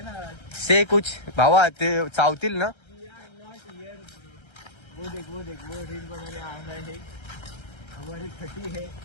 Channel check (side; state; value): right; late; 1.3 ms